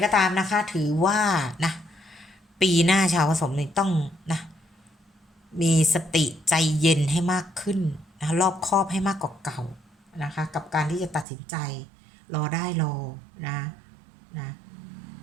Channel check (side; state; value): left; drops out; at 11.2 s